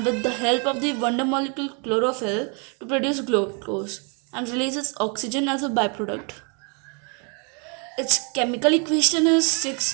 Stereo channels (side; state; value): left; quieter; 36.1 dB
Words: with the help of the wonder molecule chlorophyll to produce glucose and releases oxygen as a byproduct. Its chemical equation is